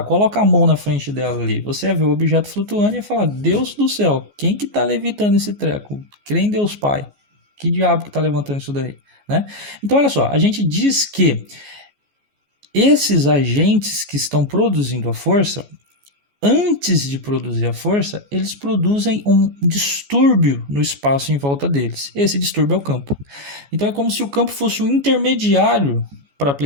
coloca a mão na frente dela ali. Você ia ver o objeto flutuando e ia falar, Deus do céu, quem que tá levitando esse treco? Crê em Deus Pai. Que diabo que tá levantando isso daí? Né? Então, olha só, a gente diz que esses agentes que estão produzindo a força, antes de produzir a força, eles produzem um distúrbio no espaço em volta deles. Esse distúrbio é o campo. Então é como se o campo fosse um intermediário para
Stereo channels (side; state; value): left; late; 14 ms